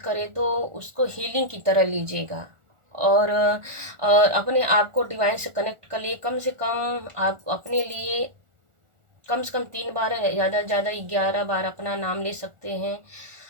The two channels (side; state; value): left; late; 1.4 ms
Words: तो उसको हीलिंग की तरह लीजिएगा। और अपने आप को डिवाइन से कनेक्ट कर लिए। कम से कम आप अपने लिए कम से कम 3 बार, ज़्यादा से ज़्यादा 11 बार अपना नाम ले सकते हैं।